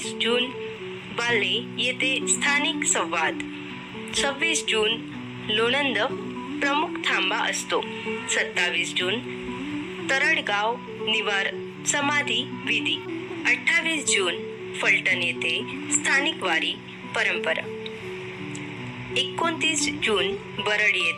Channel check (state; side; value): identical; both; correlation 1.00